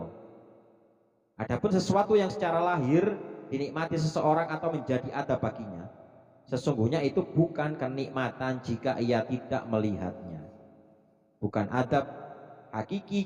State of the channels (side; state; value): both; identical; correlation 1.00